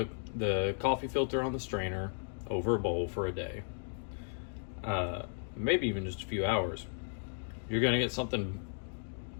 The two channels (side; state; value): right; silent; digital silence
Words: coffee filter on the strainer over a bowl for a day, maybe even just a few hours, you're gonna get something